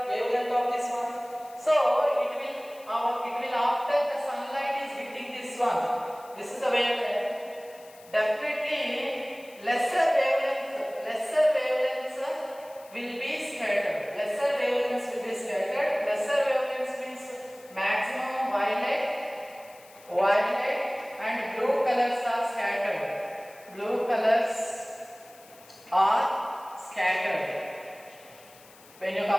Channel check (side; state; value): left; noise; hiss, 24 dB below the sound